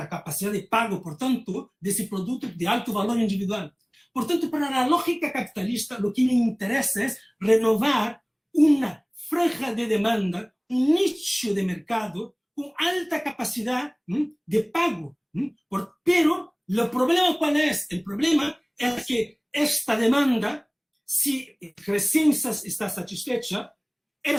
capacidad de pago, por tanto, de ese producto de alto valor individual. Por tanto, para la lógica capitalista, lo que le interesa es renovar una franja de demanda, un nicho de mercado con alta capacidad de pago. Pero, ¿el problema cuál es? El problema es que esta demanda, si recién está satisfecha,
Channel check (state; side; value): identical; both; correlation 1.00